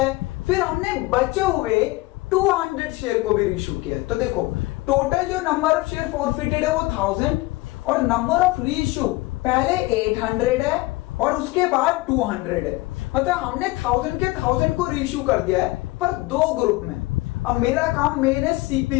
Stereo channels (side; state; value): right; quieter; 20.8 dB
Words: फिर हमने बचे हुए 200 शेयर को भी रीइशू किया है। तो देखो टोटल जो नंबर ऑफ शेयर फॉरफिटेड है वो 1000 और नंबर ऑफ रीइशू पहले 800 है और उसके बाद 200 है। मतलब हमने 1000 के 1000 को रीइशू कर दिया है पर 2 ग्रुप में। अब मेरा काम मेन है